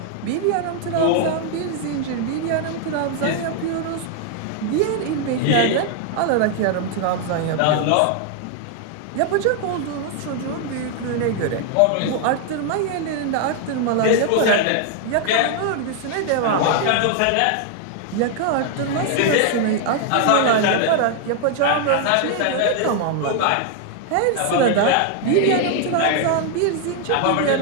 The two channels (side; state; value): both; different; correlation 0.00